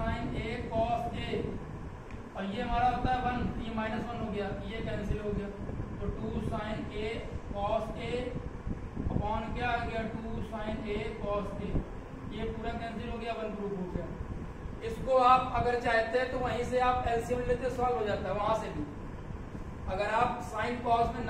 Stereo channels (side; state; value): both; identical; correlation 1.00